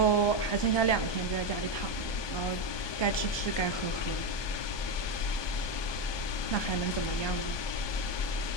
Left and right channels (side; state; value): right; late; 1.2 ms